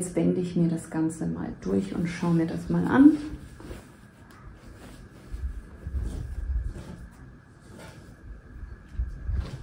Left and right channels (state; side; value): identical; both; correlation 1.00